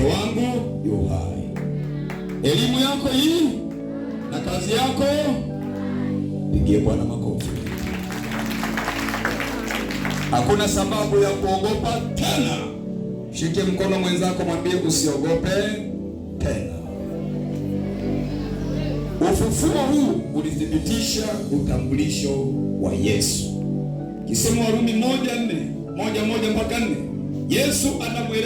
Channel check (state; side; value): identical; both; correlation 1.00